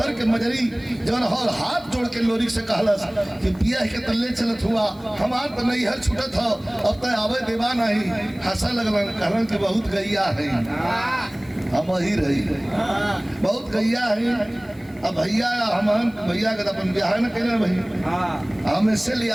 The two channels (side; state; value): left; noise; hiss, 28 dB below the sound